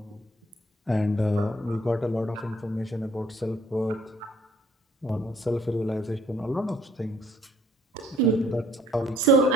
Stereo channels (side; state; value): both; normal; correlation 0.61